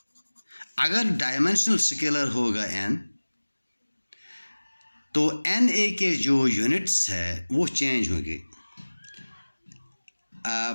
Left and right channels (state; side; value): inverted; both; correlation -1.00